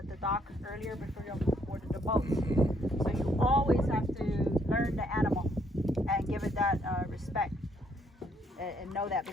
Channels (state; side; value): normal; both; correlation 0.69